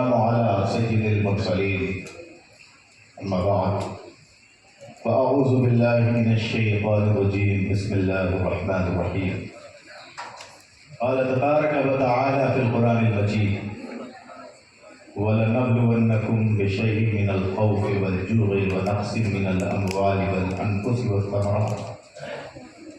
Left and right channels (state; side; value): identical; both; correlation 1.00